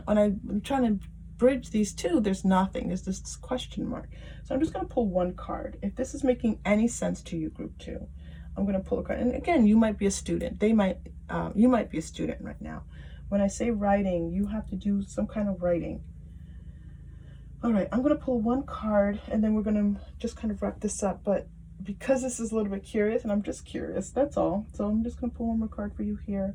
when I'm trying to bridge these two, there's nothing. There's this question mark. So I'm just going to pull one card. If this is making any sense to you, group 2, I'm going to pull a card. And again, you might be a student. You might be a student right now. When I say writing, you have to do some kind of writing. All right, I'm going to pull one card, and then we're going to just kind of wrap this up. But because this is a little bit curious, and I'm just curious, that's all. So I'm just going to pull one more card for you here.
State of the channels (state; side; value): identical; both; correlation 1.00